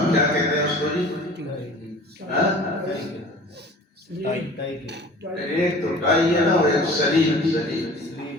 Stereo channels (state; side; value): normal; both; correlation 0.44